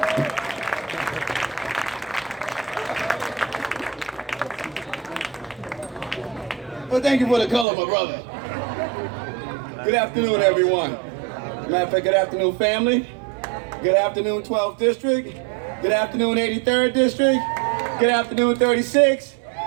Well, thank you for the color, my brother. Good afternoon, everyone. Matter of fact, good afternoon, family. Good afternoon, 12th District. Good afternoon, 83rd District. Good afternoon, 36.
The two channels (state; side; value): drops out; left; at 7.7 s